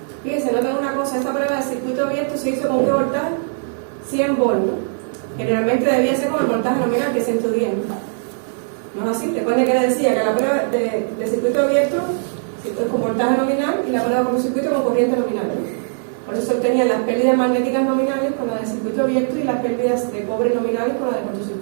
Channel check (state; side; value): silent; left; digital silence